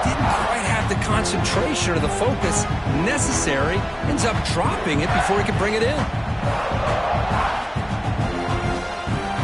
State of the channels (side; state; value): both; identical; correlation 1.00